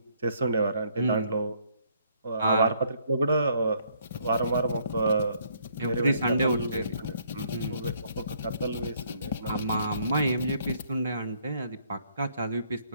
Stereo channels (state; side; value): inverted; both; correlation -0.66